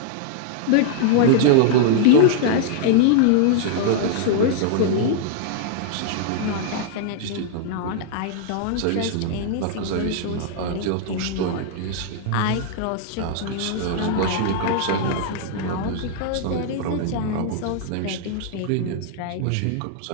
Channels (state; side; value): different; both; correlation -0.01